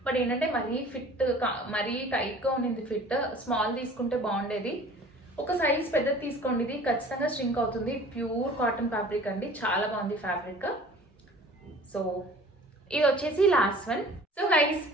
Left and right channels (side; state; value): both; normal; correlation 0.47